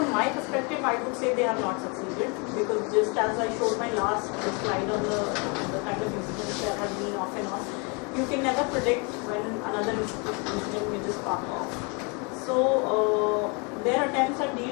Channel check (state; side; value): quieter; right; 32.5 dB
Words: my perspective, I would say they have not succeeded, because just as I showed my last slide on the kind of incidents that have been off and on, you can never predict when another incident may just spark off. So their attempts at